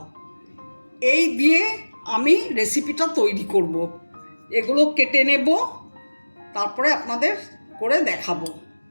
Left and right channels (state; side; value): inverted; both; correlation -1.00